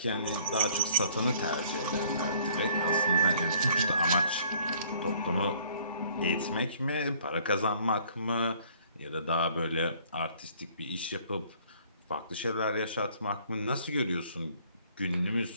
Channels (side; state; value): both; inverted; correlation -0.58